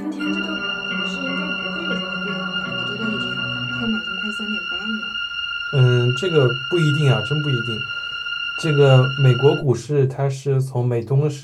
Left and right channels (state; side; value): identical; both; correlation 1.00